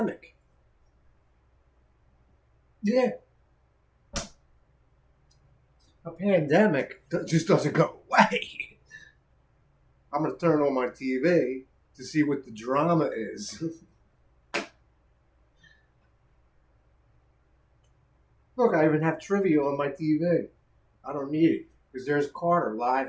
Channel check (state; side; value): identical; both; correlation 1.00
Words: Yeah, a pandemic just doesn't go away. I'm going to turn on my TV to see what the drama is. Look, I even have trivia on my TV. I don't need it because there's Carter live